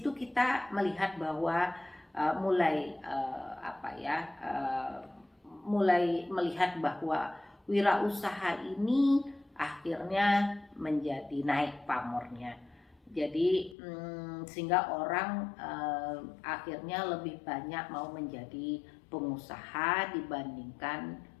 kita melihat bahwa mulai melihat bahwa wirausaha ini akhirnya menjadi naik pamornya. Jadi sehingga orang akhirnya lebih banyak mau menjadi pengusaha dibandingkan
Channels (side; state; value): right; drops out; at 13.8 s